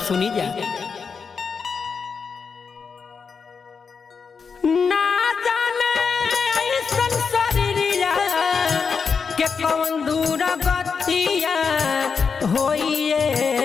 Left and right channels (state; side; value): quieter; right; 5.6 dB